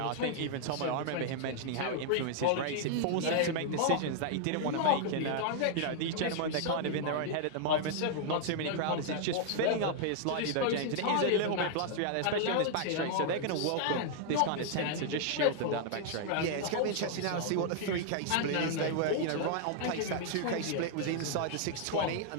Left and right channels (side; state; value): both; different; correlation -0.01